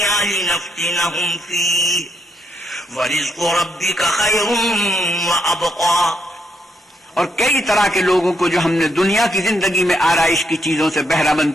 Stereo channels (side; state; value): both; normal; correlation 0.76